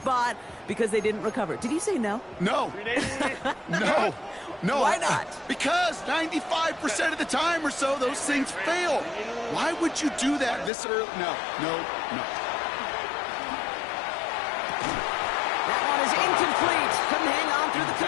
because they didn't recover. Did you say no? No. No. Why not? Because 95% of the time or so, those things fail. Why would you do that this early? No. That one is incomplete. Couldn't hang on through the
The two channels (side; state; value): right; drops out; at 10.7 s